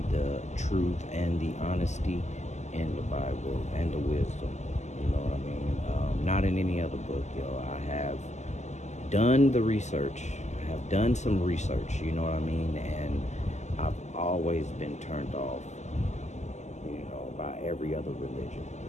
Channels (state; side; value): late; right; 0.33 ms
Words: the truth and the honesty in the Bible and the wisdom. You know what I mean? Not in any other book, yo. I have done the research. I have done some research, you know what I mean? And I've always been turned off, by every other religion.